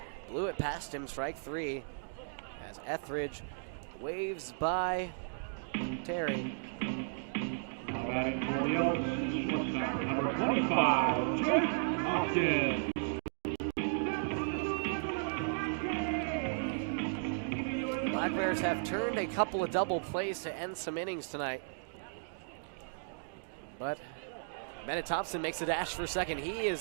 Blew it past him. Strike 3 as Etheridge waves by Terry. Now batting for the Elks, shortstop, number 25, Jake Hoskins. Black Bears have turned a couple of double plays to end some innings tonight. But Bennett Thompson makes a dash for second. He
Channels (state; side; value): silent; left; digital silence